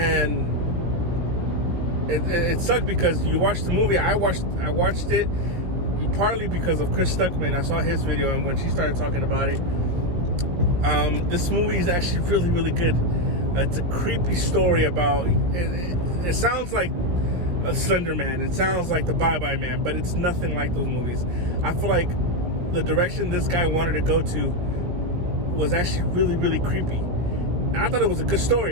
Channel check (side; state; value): left; late; 17 ms